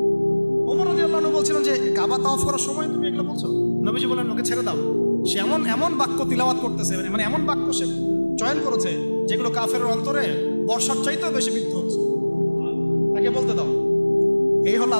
ওমর রাদিয়াল্লাহু আনহু বলছিলেন যে কাবা তাওয়াফ করার সময় তুমি এগুলো বলছো? নবীজি বলেন ওকে ছেড়ে দাও, সে এমন এমন বাক্য তিলাওয়াত করতেছে, মানে এমন বাক্য সে চয়ন করেছে যেগুলো কাফেরের অন্তরে বর্ষার চাইতেও বেশি বিদ্ধ হচ্ছে, তাকে বলতে দাও। এই হলো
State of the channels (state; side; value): inverted; both; correlation -1.00